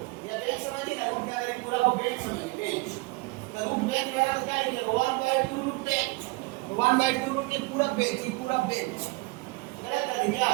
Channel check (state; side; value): quieter; left; 24.2 dB